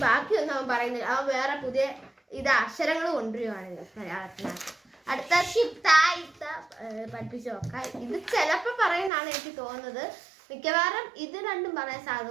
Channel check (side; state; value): left; drops out; at 9.1 s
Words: ബാക്കിയൊന്നും അവൻ പറയുന്നില്ല. അവൻ വേറെ പുതിയ അക്ഷരങ്ങൾ കൊണ്ടുവരുവാണ് മലയാളത്തിനകത്ത്. അടുത്ത ഷിപ്തായിട്ട പഠിപ്പിച്ചു നോക്കാം. ഇത് ചിലപ്പോ പറയുന്നതാണ് എനിക്ക് തോന്നുന്നത്. മിക്കവാറും ഇത് രണ്ടും പറയാൻ സാധ്യത